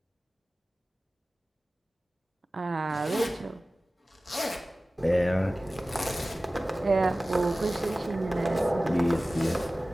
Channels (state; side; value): normal; both; correlation 0.97